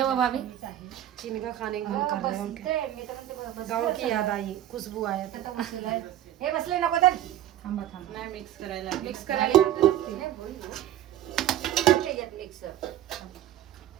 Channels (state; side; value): quieter; left; 12.4 dB